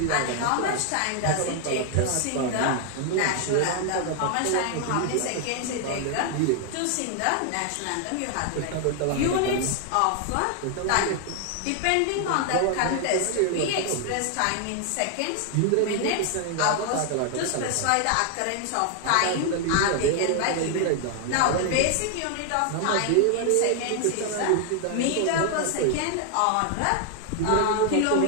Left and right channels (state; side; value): different; both; correlation 0.00